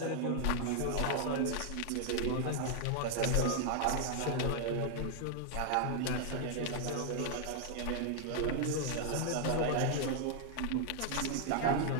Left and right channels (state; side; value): different; both; correlation 0.00